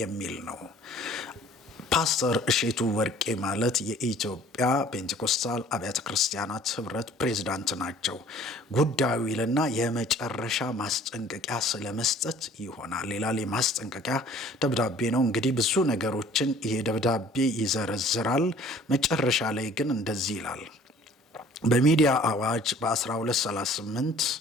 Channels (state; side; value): normal; both; correlation 0.52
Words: የሚል ነው። ፓስተር እሼቱ ወርቄ ማለት የኢትዮጵያ ፔንቴኮስታል አብያተ ክርስቲያናት ህብረት ፕሬዝዳንት ናቸው። ጉዳዩ ይልና የመጨረሻ ማስጠንቀቂያ ስለመስጠት ይሆናል ይላል። የማስጠንቀቂያ ደብዳቤ ነው። እንግዲህ ብዙ ነገሮችን ይሄ ደብዳቤ ይዘረዝራል። መጨረሻ ላይ ግን እንደዚህ ይላል። በሚዲያ አዋጅ በ1238